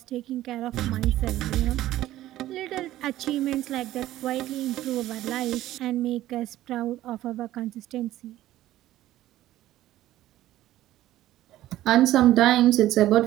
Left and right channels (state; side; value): quieter; left; 14.5 dB